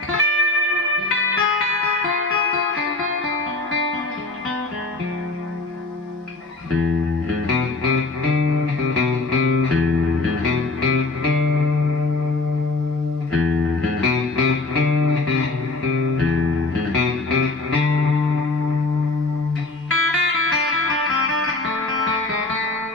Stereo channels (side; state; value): right; quieter; 3.4 dB